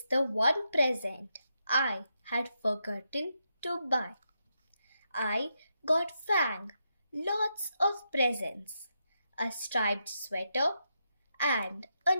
the one present I had forgotten to buy. I got Fang lots of presents, a striped sweater and a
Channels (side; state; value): both; inverted; correlation -0.83